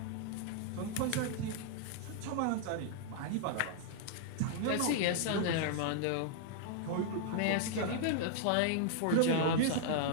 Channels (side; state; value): both; different; correlation -0.01